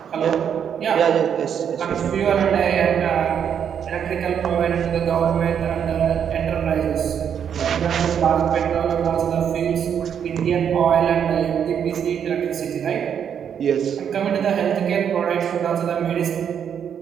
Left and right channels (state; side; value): quieter; left; 8.2 dB